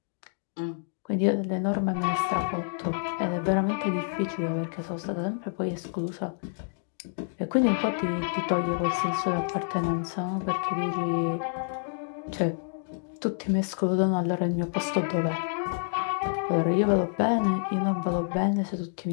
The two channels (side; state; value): right; silent; digital silence